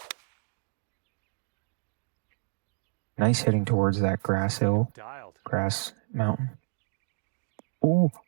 Nice hitting towards that grass hill, Dialed. grass mountain. Oh,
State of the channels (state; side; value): silent; left; digital silence